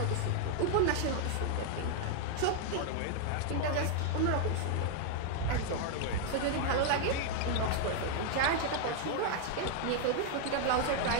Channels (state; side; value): different; both; correlation 0.00